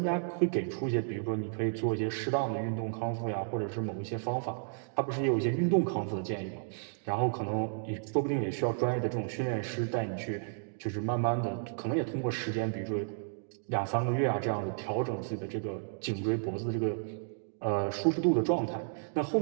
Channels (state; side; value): silent; left; digital silence